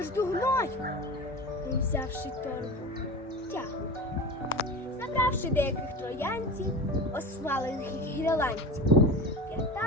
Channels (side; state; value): both; normal; correlation 0.31